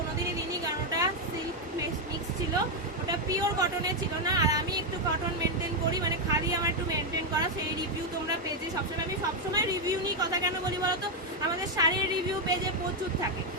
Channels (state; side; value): normal; both; correlation 0.03